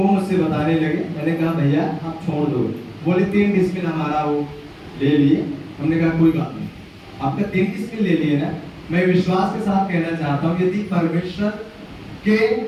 मुझसे बताने लगे। मैंने कहा भैया आप छोड़ दो, बोले 3 डिसमिल हमारा वो ले लिए। हमने कहा कोई बात नहीं, आपका 3 डिसमिल ले लिए ना। मैं विश्वास के साथ कहना चाहता हूँ, यदि परमेश्वर के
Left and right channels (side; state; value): both; identical; correlation 1.00